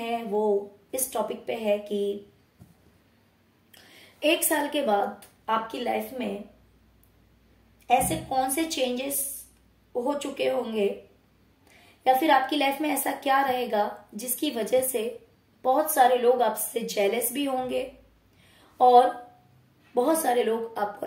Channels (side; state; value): both; identical; correlation 1.00